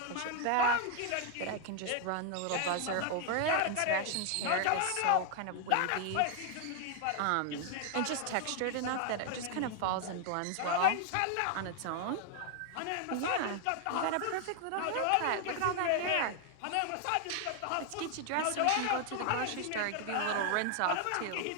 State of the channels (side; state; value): both; different; correlation 0.00